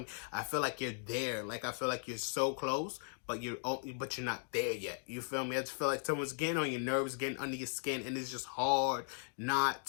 I feel like you're there. Like, I feel like you're so close, but you're not there yet. You feel me? I just feel like someone's getting on your nerves, getting under your skin, and it's just hard not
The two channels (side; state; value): right; silent; 53 dB below the other